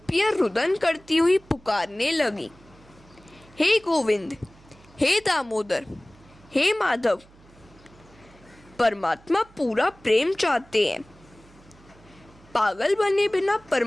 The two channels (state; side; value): noise; right; hum, 26 dB below the sound